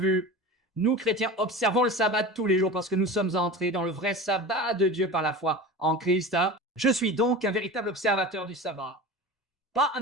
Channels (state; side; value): normal; both; correlation 0.32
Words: nous chrétiens observons le sabbat tous les jours parce que nous sommes entrés dans le vrai sabbat de Dieu par la foi en Christ. Je suis donc un véritable observateur du sabbat. Pas un